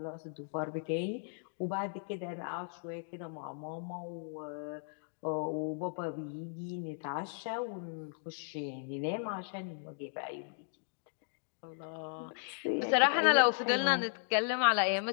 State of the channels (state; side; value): silent; right; digital silence